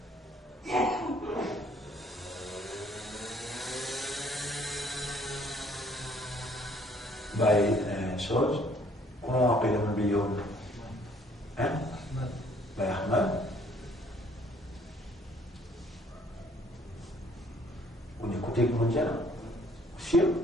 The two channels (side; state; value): both; normal; correlation 0.61